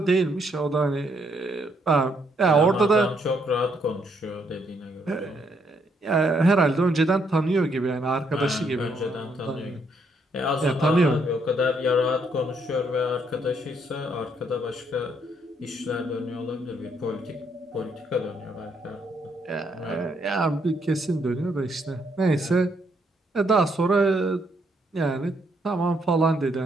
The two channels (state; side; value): normal; both; correlation 0.72